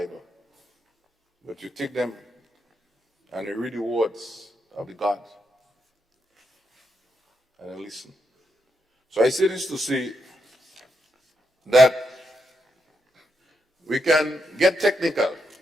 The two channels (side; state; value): both; normal; correlation 0.82